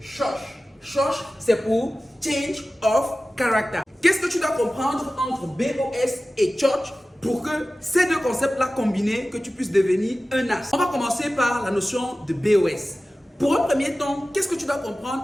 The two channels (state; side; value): normal; both; correlation 0.96